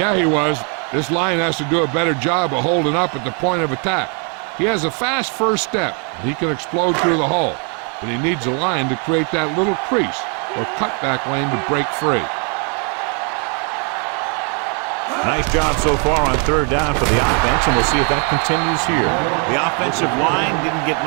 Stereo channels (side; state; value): left; quieter; 38.3 dB